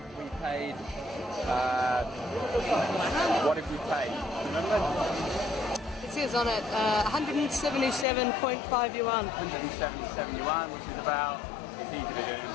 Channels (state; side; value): drops out; right; at 8.1 s